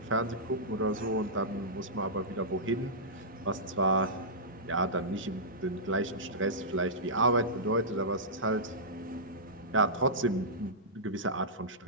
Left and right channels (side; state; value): both; normal; correlation -0.16